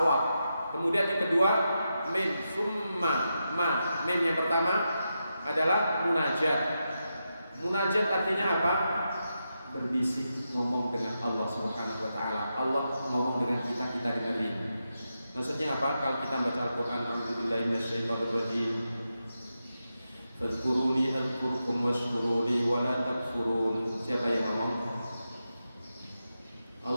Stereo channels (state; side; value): inverted; both; correlation -0.88